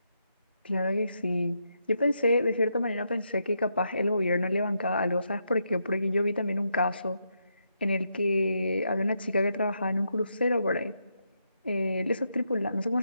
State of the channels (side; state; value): both; inverted; correlation -0.81